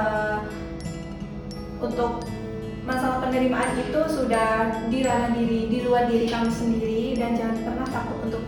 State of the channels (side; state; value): both; identical; correlation 1.00